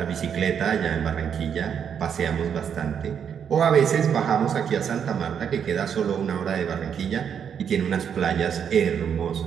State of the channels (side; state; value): left; quieter; 7.8 dB